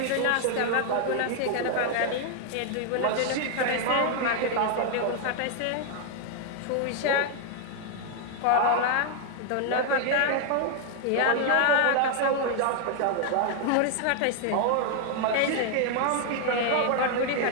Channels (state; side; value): different; both; correlation 0.00